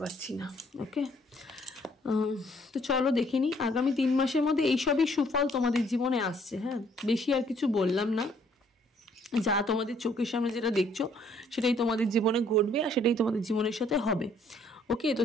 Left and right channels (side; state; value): both; normal; correlation 0.64